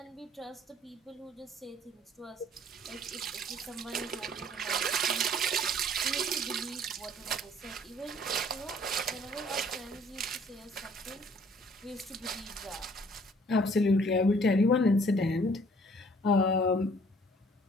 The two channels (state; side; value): normal; both; correlation 0.58